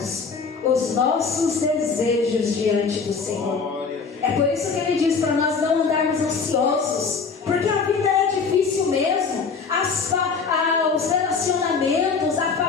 os nossos desejos diante do Senhor. É por isso que Ele diz para nós não andarmos ansiosos, porque a vida é difícil mesmo. Os relacionamentos, a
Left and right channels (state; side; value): quieter; right; 5.2 dB